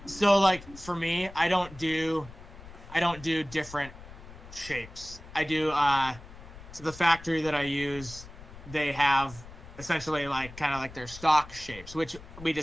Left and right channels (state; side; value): noise; left; rumble, 17 dB below the sound